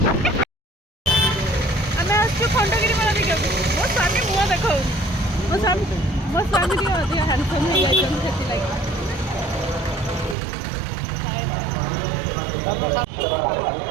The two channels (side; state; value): left; drops out; at 10.4 s